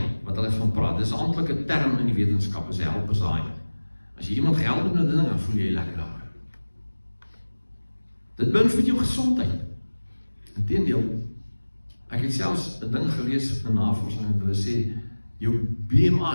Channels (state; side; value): inverted; both; correlation -1.00